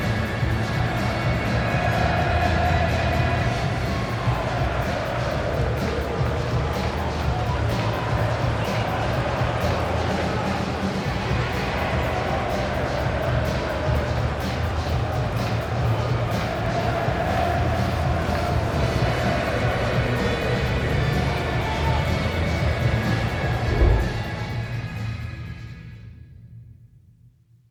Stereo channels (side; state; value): both; identical; correlation 1.00